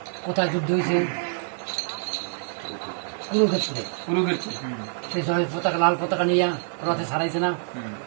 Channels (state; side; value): silent; left; 61 dB below the other